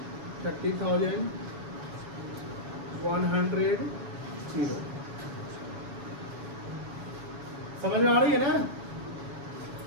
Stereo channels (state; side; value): late; left; 7.1 ms